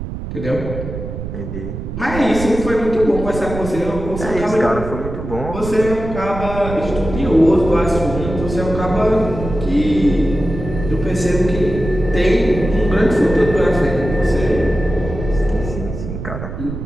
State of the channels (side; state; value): right; noise; rumble, 7 dB below the sound